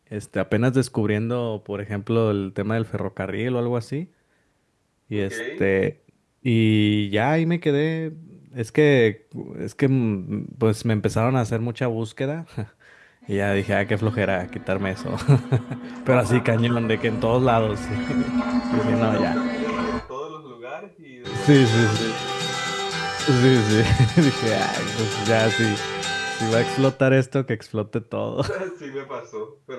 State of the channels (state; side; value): identical; both; correlation 1.00